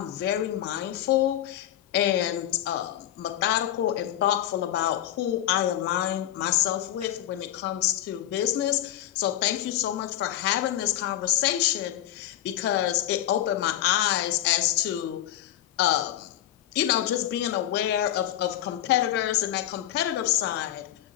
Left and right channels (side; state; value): right; quieter; 12.5 dB